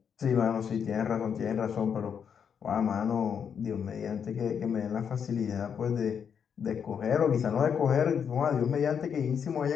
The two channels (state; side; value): quieter; right; 7.4 dB